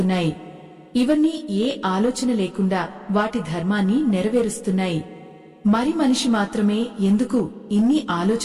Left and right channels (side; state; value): both; identical; correlation 1.00